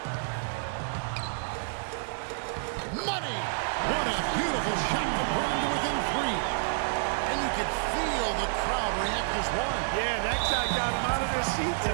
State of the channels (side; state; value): left; silent; digital silence